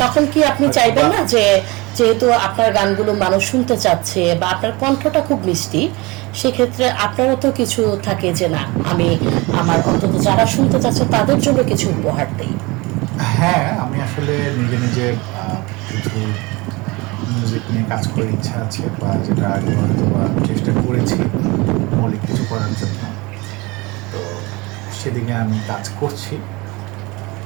তখন কি আপনি চাইবেন না যে যেহেতু আপনার গানগুলো মানুষ শুনতে চাচ্ছে বা আপনার কণ্ঠটা খুব মিষ্টি, সেক্ষেত্রে আপনারও তো কিছু থাকে যে না, আমি আমার অন্তত যারা শুনতে চাচ্ছে তাদের জন্য কিছু উপহার দিই? হ্যাঁ, আমি আসলে নিজে নিজে কিছু মিউজিক নিয়ে কাজ করার ইচ্ছা আছে, বা যেটা আগে হয়তো বা চেষ্টা করেছি মৌলিক কিছু করার জন্য। তো সেদিকে আমি কাজ করছি,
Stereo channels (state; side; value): quieter; left; 24.2 dB